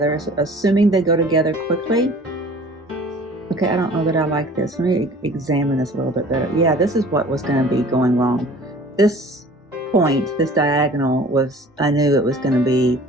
assuming they go together quickly. Okay, I don't know that I like this. Let me examine this a little bit better. Yeah, this is what was gonna be going wrong. This point, this diagonal was, I knew it was gonna be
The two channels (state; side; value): normal; both; correlation 0.47